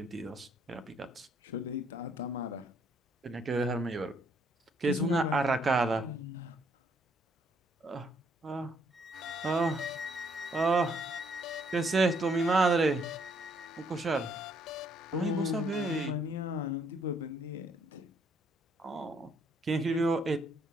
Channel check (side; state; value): both; normal; correlation 0.68